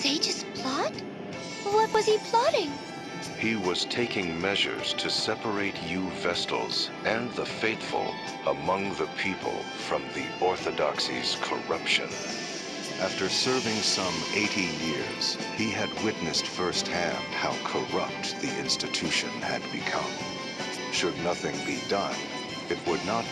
plot? What was he plotting? He was taking measures to separate you Vestals and the faithful among the people from the Orthodoxy's corruption. After serving some 80 years, he had witnessed firsthand how corrupt the institution had become. Should nothing be done, it would not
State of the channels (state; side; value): identical; both; correlation 1.00